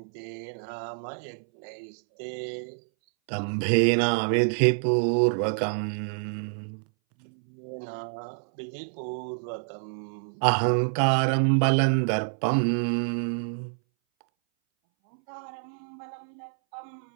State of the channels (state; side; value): silent; left; 60 dB below the other